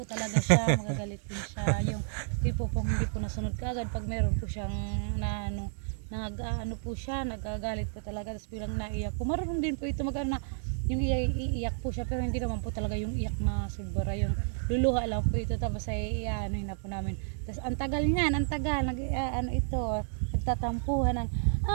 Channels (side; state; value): left; silent; digital silence